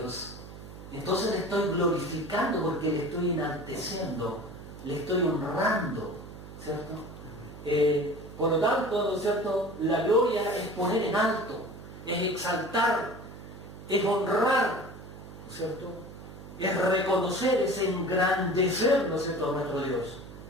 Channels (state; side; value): noise; right; hum, 14 dB below the sound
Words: entonces le estoy glorificando porque le estoy enalteciendo, le estoy honrando, ¿cierto? Por lo tanto, ¿no es cierto?, la gloria es poner en alto, es exaltar, es honrar, ¿no es cierto?, es reconocer, es engrandecer, ¿no es cierto?, a nuestro Dios.